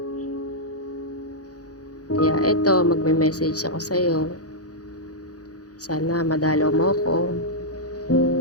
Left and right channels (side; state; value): right; late; 0.68 ms